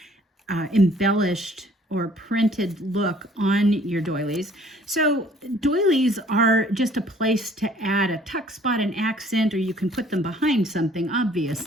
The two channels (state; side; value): normal; both; correlation 0.57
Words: embellished or printed look on your doilies. So doilies are just a place to add a tuck spot, an accent, or you can put them behind something.